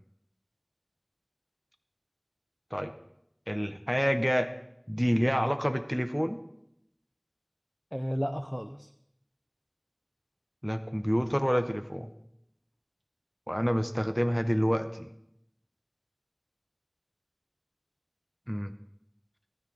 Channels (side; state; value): both; identical; correlation 1.00